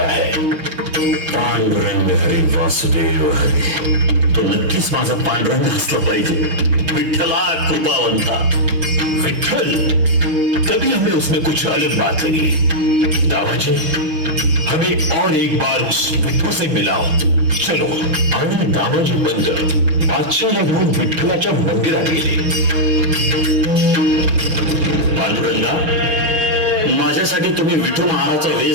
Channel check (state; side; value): late; left; 6.1 ms